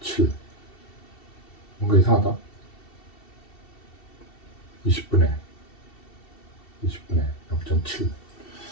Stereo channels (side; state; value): right; late; 2.7 ms